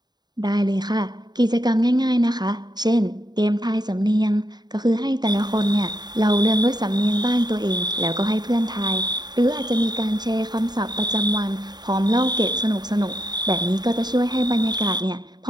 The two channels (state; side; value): late; left; 0.20 ms